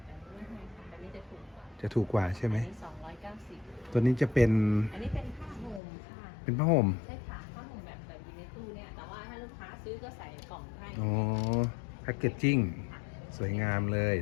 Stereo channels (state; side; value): drops out; right; at 5.8 s